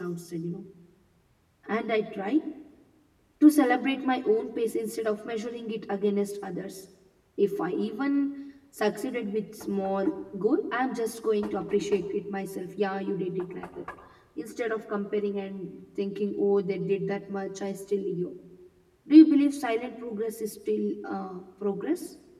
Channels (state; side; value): identical; both; correlation 1.00